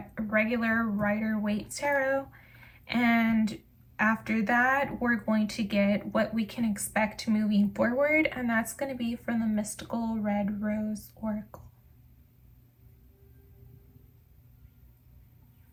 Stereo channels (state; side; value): identical; both; correlation 1.00